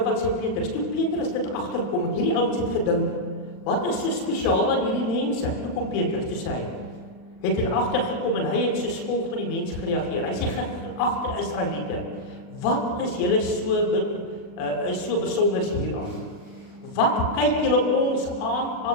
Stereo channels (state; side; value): late; right; 40 ms